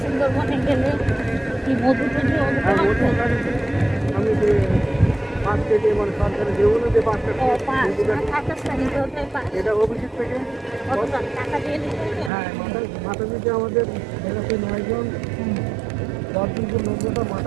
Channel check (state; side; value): drops out; left; at 12.3 s